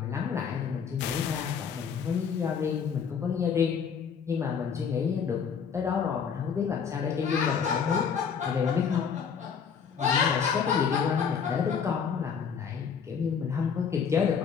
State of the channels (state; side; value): quieter; right; 6.7 dB